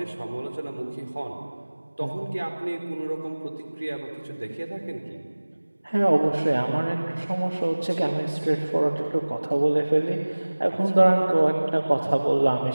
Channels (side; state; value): both; inverted; correlation -1.00